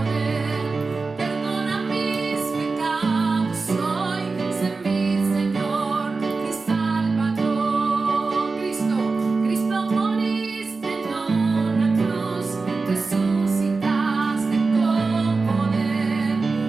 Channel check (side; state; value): left; quieter; 4.1 dB